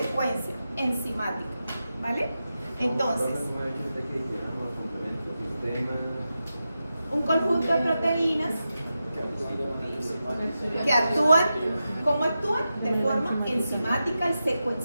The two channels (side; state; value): both; inverted; correlation -0.91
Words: enzimática, ¿vale? Entonces, un conjunto de proteínas que actúan, ¿cómo actúan? De forma enzimática y